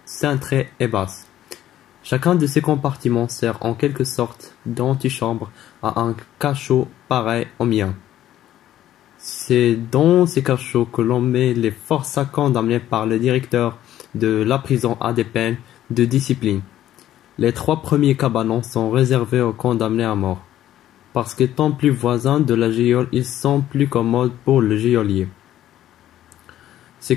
cintrées et basses. Chacun de ces compartiments sert en quelque sorte d'antichambre à un cachot pareil au mien. C'est dans ces cachots que l'on met les forçats condamnés par le directeur de la prison à des peines de discipline. Les 3 premiers cabanons sont réservés aux condamnés à mort, parce qu'étant plus voisins de la geôle, ils sont plus commodes pour le geôlier. Ces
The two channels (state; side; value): quieter; right; 12.5 dB